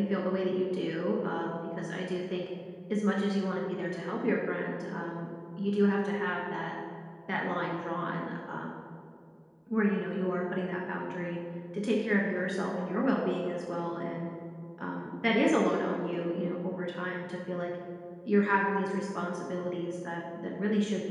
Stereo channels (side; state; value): both; identical; correlation 1.00